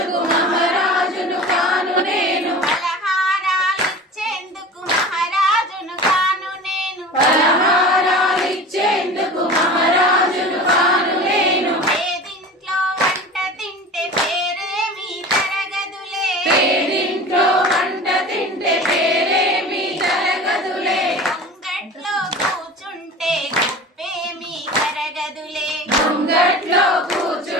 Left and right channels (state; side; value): normal; both; correlation 0.36